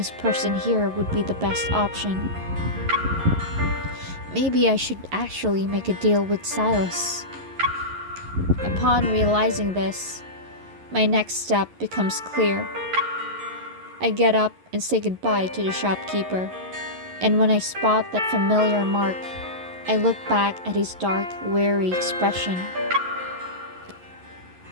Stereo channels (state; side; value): late; left; 11 ms